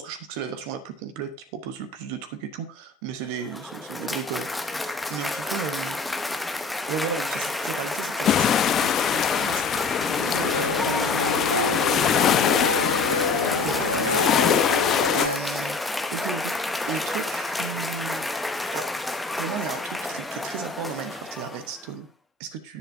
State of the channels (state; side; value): quieter; right; 3.9 dB